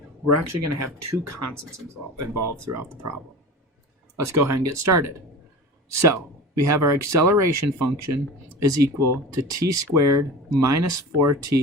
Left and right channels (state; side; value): normal; both; correlation 0.34